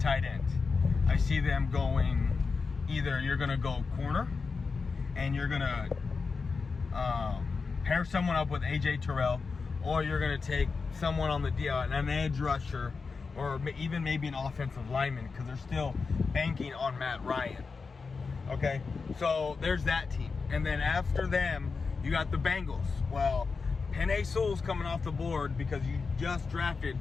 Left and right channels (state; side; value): quieter; right; 4.7 dB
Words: end. I see them going, either you're gonna go corner and you're gonna pair someone up with AJ Terrell, or you're going to take someone on the an edge rusher, or even maybe an offensive lineman, because they're still banking on Matt Ryan. Okay, so there's that team. And then after them, you got the Bengals. Well, Penei Sewell's coming off the board because you just drafted